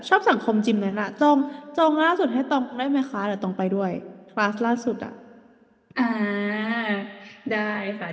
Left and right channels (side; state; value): both; identical; correlation 1.00